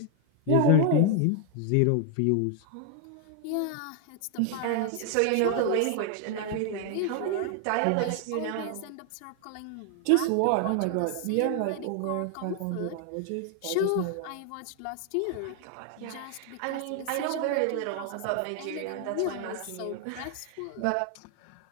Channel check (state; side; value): different; both; correlation 0.00